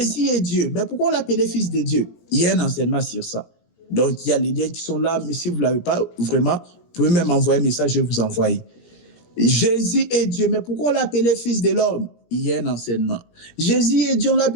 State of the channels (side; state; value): right; late; 17 ms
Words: est Dieu, mais pourquoi on l'appelait fils de Dieu? Il y a un enseignement sur ça. Donc, il y a les liens qui sont là, mais si vous ne l'avez pas, vraiment, vous pouvez même envoyer un message, je vais vous envoyer. Jésus est Dieu, mais pourquoi on l'appelait fils de l'homme? Il y a un enseignement. Jésus est Dieu, on